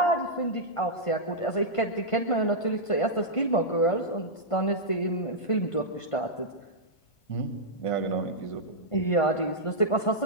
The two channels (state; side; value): late; right; 1.5 ms